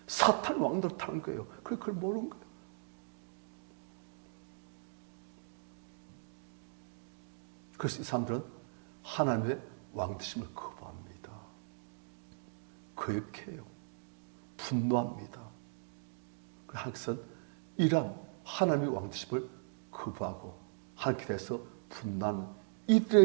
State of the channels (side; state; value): left; silent; digital silence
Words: 사탄 왕노릇하는 거예요. 그걸 모르는 거예요. 그래서 이 사람들은 하나님의 왕되심을 거부합니다. 거역해요. 분노합니다. 하나님께서는 이러한 하나님의 왕되심을 거부하고 하나님께 대해서 분노하는